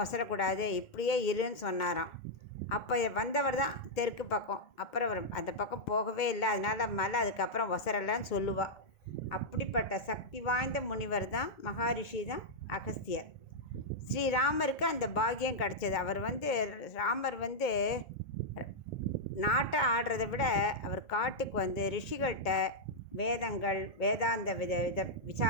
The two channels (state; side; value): late; right; 2.2 ms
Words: ஒசரக்கூடாது, இப்படியே இருன்னு சொன்னாராம். அப்போ வந்தவர் தான் தெற்கு பக்கம். அப்புறம் அவர் அந்த பக்கம் போகவே இல்லை. அதனால் மலை அதுக்கப்புறம் ஒசரலைன்னு சொல்லுவாள். அப்படிப்பட்ட சக்தி வாய்ந்த முனிவர் தான், மகாரிஷி தான் அகஸ்தியர். ஸ்ரீராமருக்கு அந்த பாக்கியம் கிடச்சது. ராமர் நாட்டை ஆடுறதை விட அவர் காட்டுக்கு வந்து ரிஷிகள்கிட்ட வேதங்கள், வேதாந்த